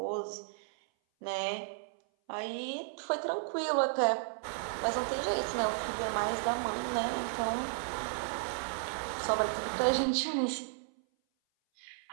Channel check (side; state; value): left; silent; 55 dB below the other